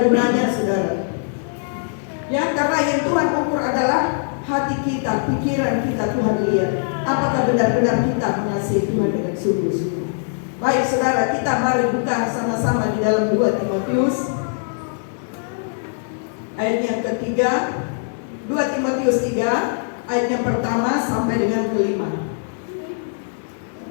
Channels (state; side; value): silent; right; digital silence